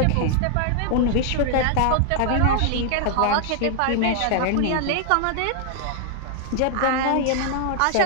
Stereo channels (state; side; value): different; both; correlation 0.00